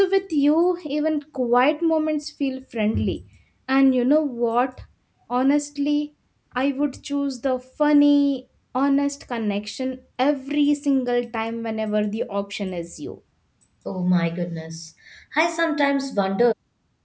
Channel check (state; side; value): identical; both; correlation 1.00